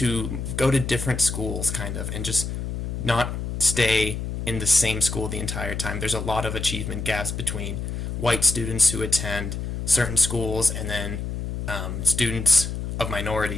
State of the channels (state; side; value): noise; left; hum, 4 dB below the sound